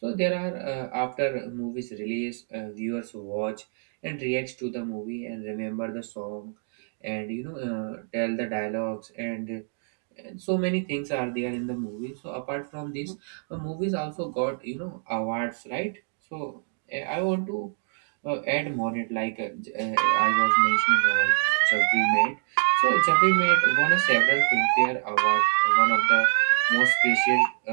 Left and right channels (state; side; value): silent; left; 60 dB below the other